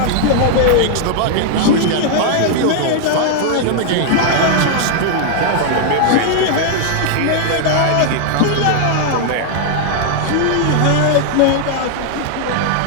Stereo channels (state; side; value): different; both; correlation 0.00